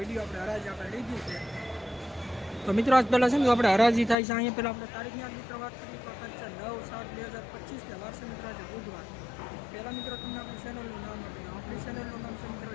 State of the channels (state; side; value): drops out; right; at 4.2 s